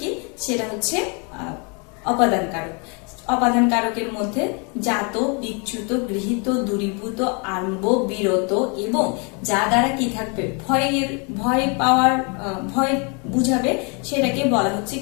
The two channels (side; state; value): right; quieter; 34.3 dB